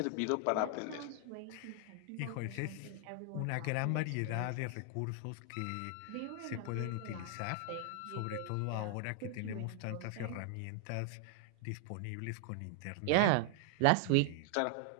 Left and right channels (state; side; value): different; both; correlation 0.00